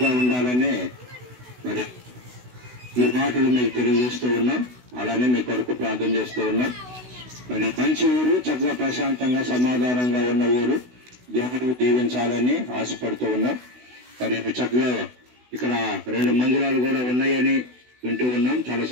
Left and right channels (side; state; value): left; late; 16 ms